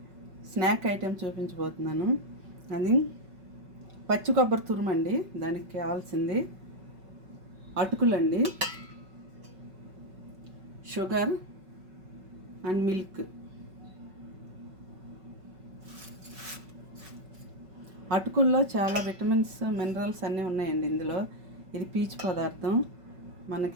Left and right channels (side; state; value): left; late; 5.3 ms